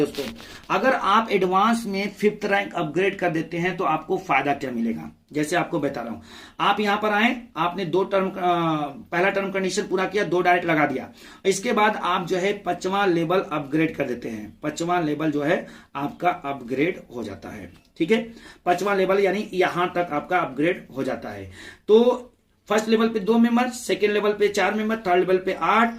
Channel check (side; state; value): both; identical; correlation 1.00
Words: अगर आप एडवांस में 5th रैंक अपग्रेड कर देते हैं तो आपको फायदा क्या मिलेगा, जैसे आपको बता रहा हूं। आप यहां पर आए, आपने 2 टर्म पहला टर्म कंडीशन पूरा किया, 2 डायरेक्ट लगा दिया, इसके बाद आप जो है 5वां लेवल अपग्रेड कर देते हैं। 5वां लेवल जो है आपका अपग्रेड हो जाता है। ठीक है, 5वां लेवल यानी यहां तक आपका अपग्रेड हो जाता है। तो फर्स्ट लेवल पे 2 मेंबर, सेकेंड लेवल पे 4 मेंबर, थर्ड लेवल पे 8,